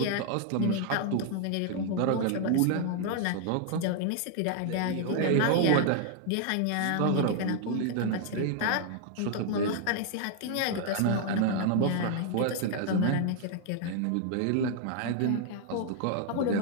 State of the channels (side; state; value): both; different; correlation 0.00